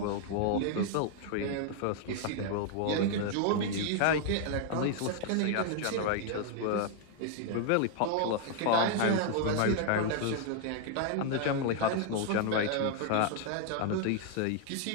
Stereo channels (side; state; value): both; different; correlation 0.00